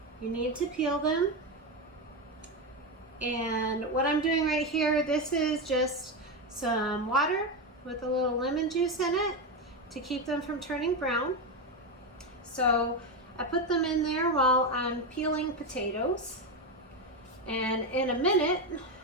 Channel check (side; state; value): both; normal; correlation 0.12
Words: you need to peel them. And what I'm doing right here, this is just some water with a little lemon juice in it to keep them from turning brown. So I put them in there while I'm peeling potatoes. And in a minute,